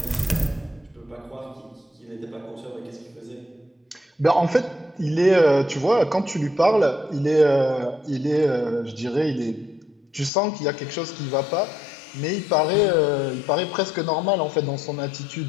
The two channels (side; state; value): right; drops out; at 10.3 s